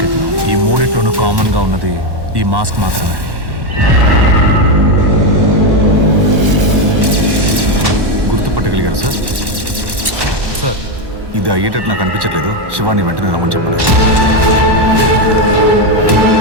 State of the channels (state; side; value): late; left; 1.1 ms